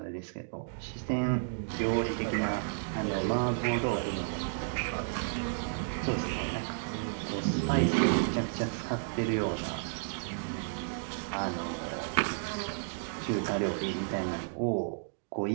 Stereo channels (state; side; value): silent; left; digital silence